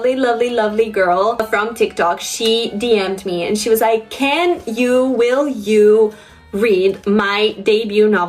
girl from TikTok. She DM'd me and she was like, will you read my debut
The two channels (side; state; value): both; identical; correlation 1.00